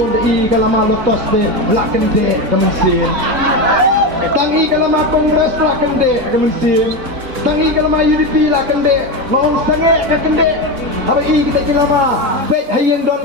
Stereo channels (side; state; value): left; late; 4.1 ms